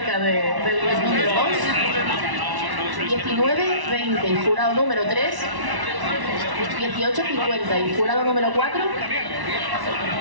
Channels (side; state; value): left; late; 1.1 ms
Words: del número 2. 19-20 y jurado número 3. 18-50 y jurado número 4.